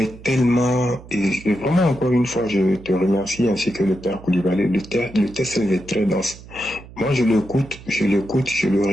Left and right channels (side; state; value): right; noise; hum, 18 dB below the sound